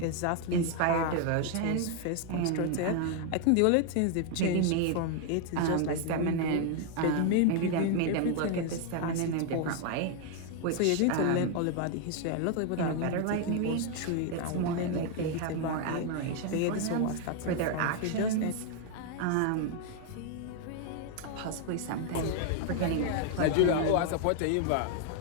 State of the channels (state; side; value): different; both; correlation 0.01